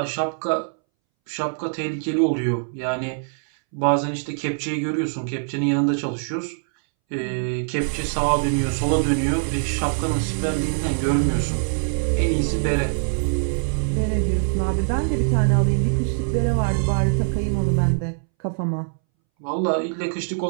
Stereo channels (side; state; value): left; silent; 63 dB below the other